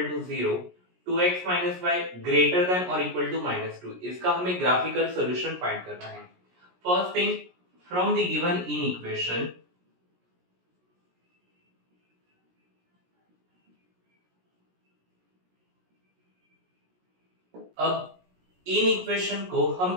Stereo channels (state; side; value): late; left; 17 ms